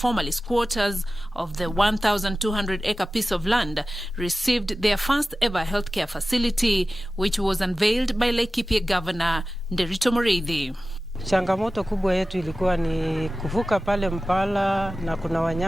squatters of the 1,200-acre piece of land, received their first ever healthcare facility, which was unveiled by Laikipia Governor Nderito Mureithi. Changamoto kubwa yetu ilikuwa ni kuvuka pale Mpala na kuna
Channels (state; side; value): normal; both; correlation 0.96